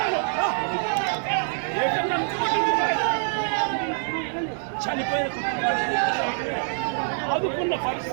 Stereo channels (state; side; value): silent; left; 62 dB below the other